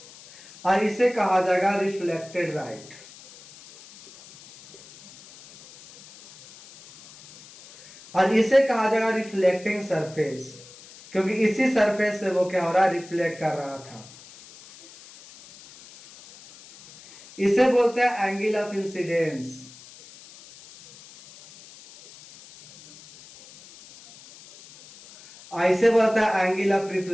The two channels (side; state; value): left; noise; hiss, 21 dB below the sound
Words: और इसे कहा जाएगा रिफ्लेक्टेड लाइट। और इसे कहा जाएगा रिफ्लेक्टिंग सरफेस, क्योंकि इसी सरफेस से वो क्या हो रहा है, रिफ्लेक्ट कर रहा था। इसे बोलते हैं एंगल ऑफ इंसिडेंस। इसे बोलता है एंगल ऑफ